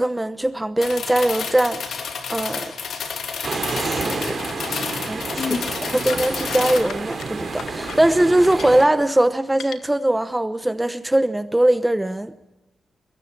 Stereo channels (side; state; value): both; normal; correlation 0.96